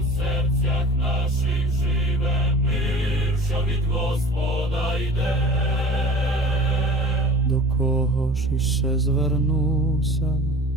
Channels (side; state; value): both; normal; correlation 0.41